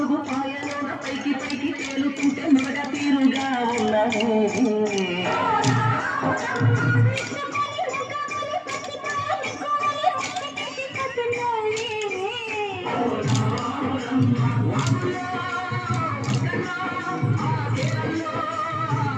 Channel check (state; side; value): identical; both; correlation 1.00